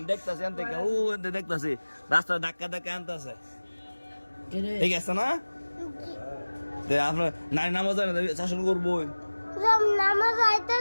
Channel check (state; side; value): inverted; both; correlation -1.00